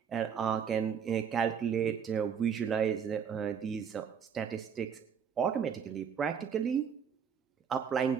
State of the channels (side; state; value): left; quieter; 7.3 dB